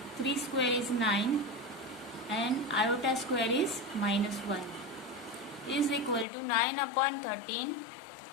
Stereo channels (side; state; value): right; drops out; at 6.2 s